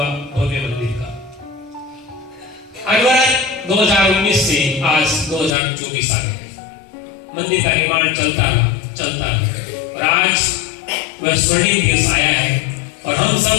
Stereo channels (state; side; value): drops out; right; at 5.6 s